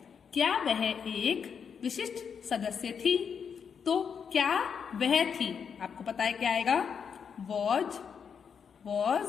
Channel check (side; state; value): right; quieter; 6.8 dB